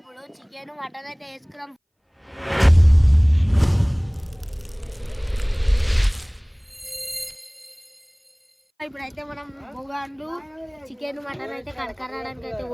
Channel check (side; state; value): both; identical; correlation 1.00